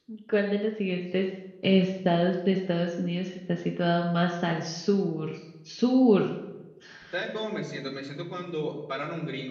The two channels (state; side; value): identical; both; correlation 1.00